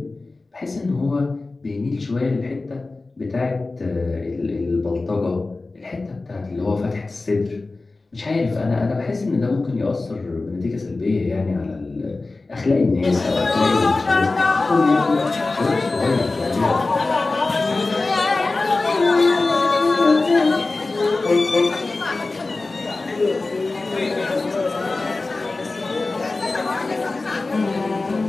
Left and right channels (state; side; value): quieter; right; 3.4 dB